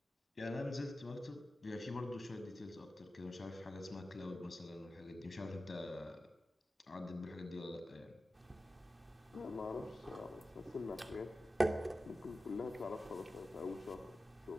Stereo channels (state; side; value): normal; both; correlation 0.94